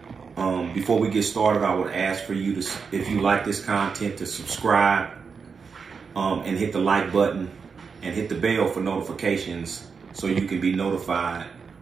Before we get started, I would ask for you to, if you like this content, to subscribe and hit the like button and hit the bell for notifications so you can be notified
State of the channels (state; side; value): quieter; left; 5.6 dB